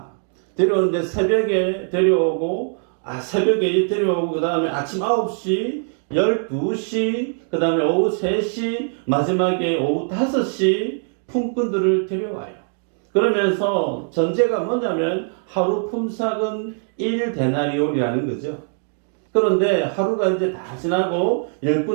데려오는데 새벽에 데려오고 그 다음에 아침 9시, 12시, 그 다음에 오후 3시, 마지막에 오후 5시 품꾼들을 데려와요. 그러면서 전제가 뭐냐면 하루 품삯은 1데나리온이라는 거죠. 그런데 하루가 이제 다 지나고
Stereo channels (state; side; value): silent; left; 56 dB below the other